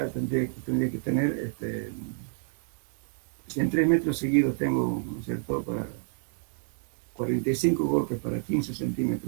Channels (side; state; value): left; silent; digital silence